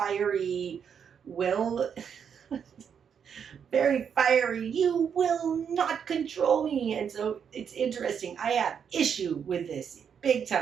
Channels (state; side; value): quieter; left; 7.5 dB